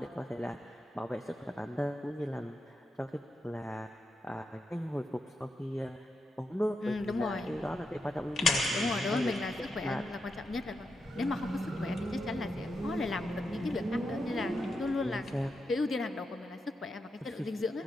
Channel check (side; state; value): both; normal; correlation 0.86